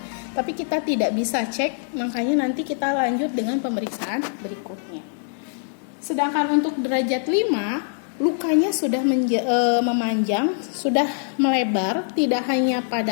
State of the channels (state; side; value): silent; right; digital silence